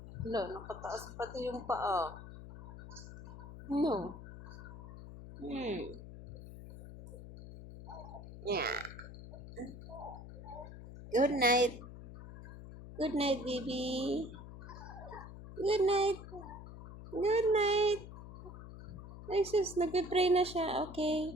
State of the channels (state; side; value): noise; left; hum, 13 dB below the sound